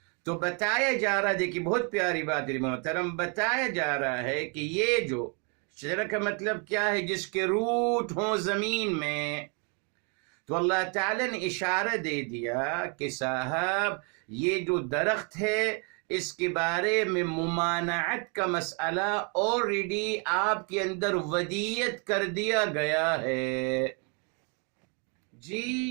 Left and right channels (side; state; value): left; quieter; 36.4 dB